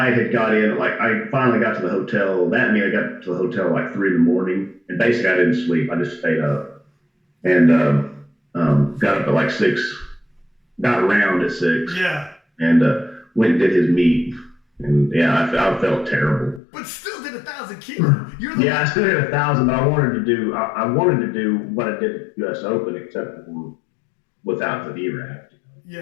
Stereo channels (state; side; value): drops out; right; at 16.6 s